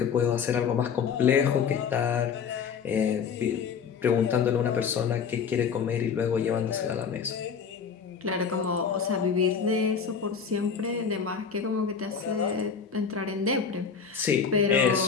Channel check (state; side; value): quieter; right; 6.4 dB